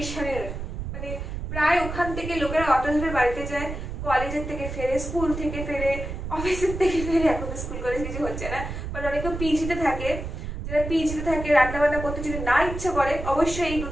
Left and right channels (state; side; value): noise; right; rumble, 6 dB below the sound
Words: মানে প্রায় ওখান থেকে লোকেরা অটো ধরে বাড়িতে যায়, কলেজের থেকে ফেরে, স্কুল থেকে ফেরে, অফিসের থেকে ফেরে। এখন তো স্কুল কলেজ কিছু হচ্ছে না, বাট অনেকে পিজিতে থাকে, যারা পিজিতে থাকে রান্না বান্না করতে যদি না ইচ্ছা করে, অবশ্যই এই